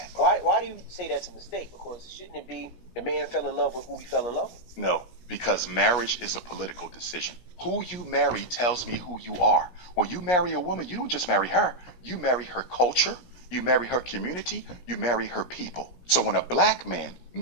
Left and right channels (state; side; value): late; right; 17 ms